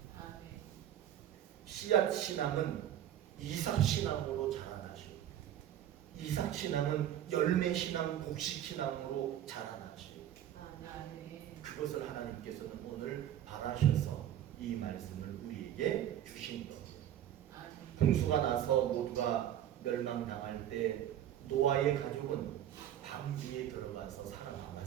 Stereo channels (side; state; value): left; quieter; 11.1 dB